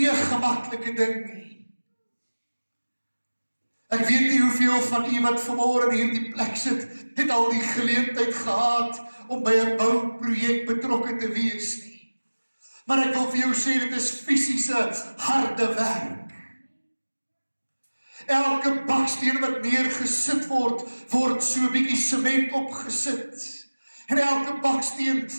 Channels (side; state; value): both; inverted; correlation -1.00